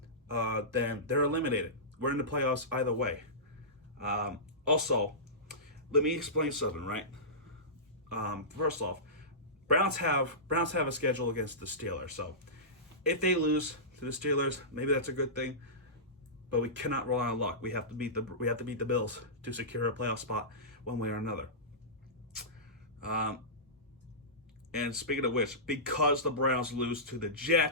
then they're eliminated. We're in the playoffs either way. Also, let me explain something, right? First off, Browns have a schedule against the Steelers. So if they lose to the Steelers, maybe that's a good thing. But we cannot rely on luck. We have to beat the Bills to secure a playoff spot one way or another. And speaking of which, because the Browns lose to the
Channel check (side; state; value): both; normal; correlation -0.19